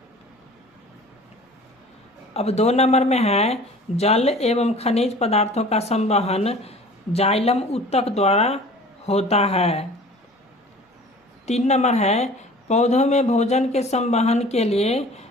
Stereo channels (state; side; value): normal; both; correlation 0.45